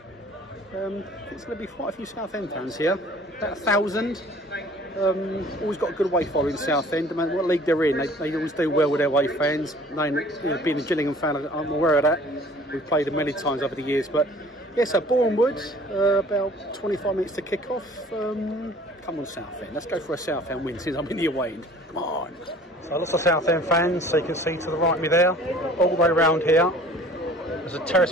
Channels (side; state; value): both; normal; correlation 0.50